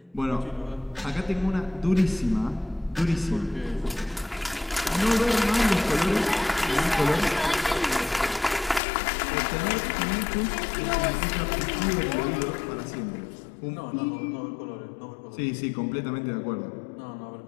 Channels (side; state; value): right; drops out; at 8.8 s